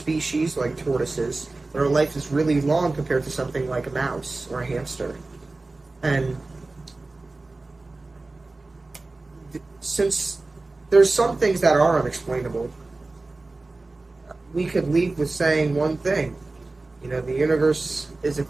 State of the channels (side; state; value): left; quieter; 3.3 dB